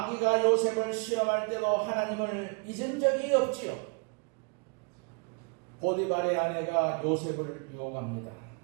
요셉을 시험할 때도 하나님을 잊은 적이 없지요. 보디발의 아내가 요셉을 유혹합니다.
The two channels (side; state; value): left; quieter; 35.6 dB